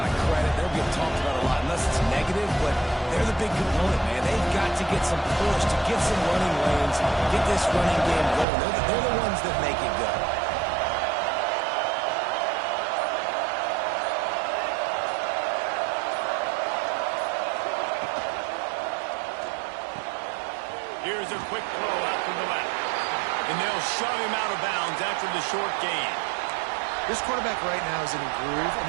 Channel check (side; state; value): left; drops out; at 8.5 s